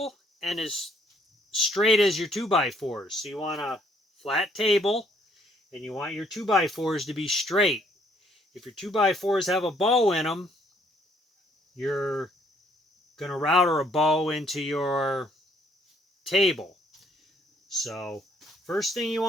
and as straight as your 2x4s. So you want a flat table and you want your 2x4s to be straight. If your 2x4s have a bow in them, you're going to router a bow into your table. So first thing you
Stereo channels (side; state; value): both; normal; correlation 0.66